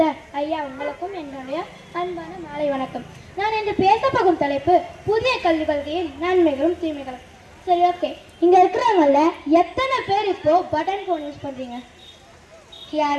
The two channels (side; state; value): both; identical; correlation 1.00